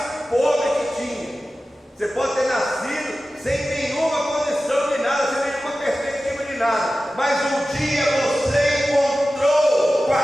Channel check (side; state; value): both; normal; correlation 0.95